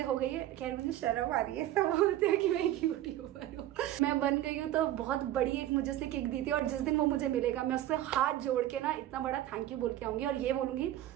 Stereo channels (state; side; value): quieter; left; 13.4 dB